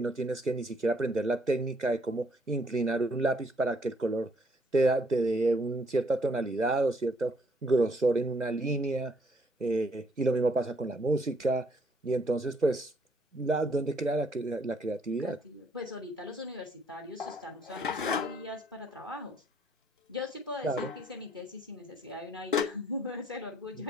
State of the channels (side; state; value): both; normal; correlation 0.67